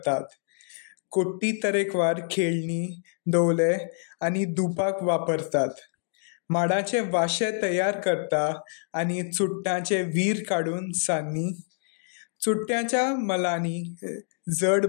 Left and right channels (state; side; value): silent; right; digital silence